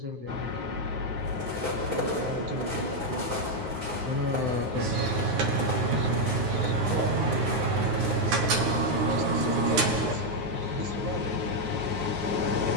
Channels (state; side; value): late; left; 9.5 ms